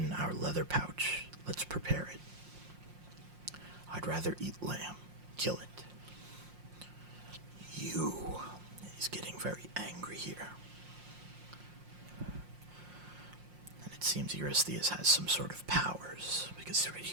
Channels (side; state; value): left; late; 5.6 ms